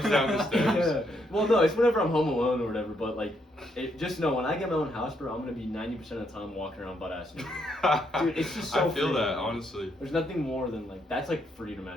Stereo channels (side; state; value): both; normal; correlation 0.75